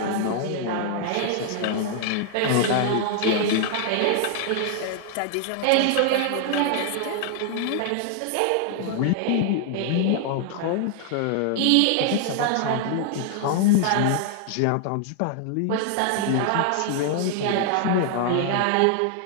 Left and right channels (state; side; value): different; both; correlation 0.00